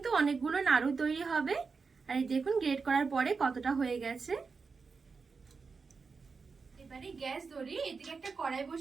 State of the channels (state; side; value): quieter; left; 4.9 dB